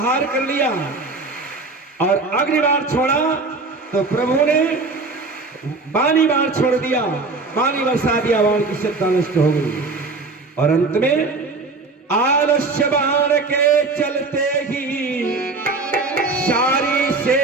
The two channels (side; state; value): left; quieter; 3.7 dB